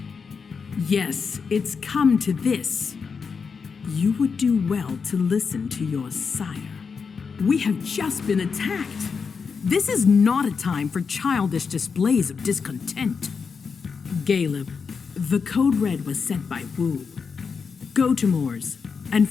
Yes, it's come to this. You would do well to listen to your sire. We have just been attacked. This is not a time for childish displays of discontent. Caleb, the code red was sent by Wu. Go to Moore's and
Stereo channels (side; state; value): right; quieter; 5.5 dB